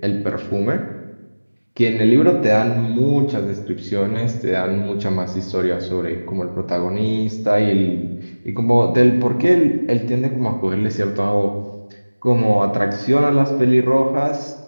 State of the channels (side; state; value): both; inverted; correlation -1.00